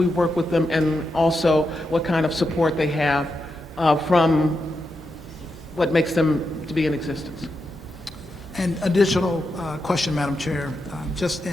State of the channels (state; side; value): normal; both; correlation 0.86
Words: work with them, and also what kind of support they have from what makes them to be in existence. And additional question, Madam Chair, just